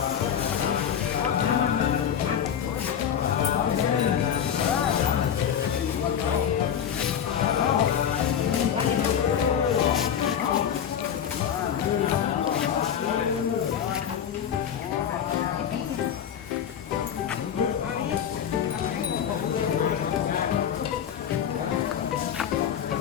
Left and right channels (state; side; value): quieter; right; 8.7 dB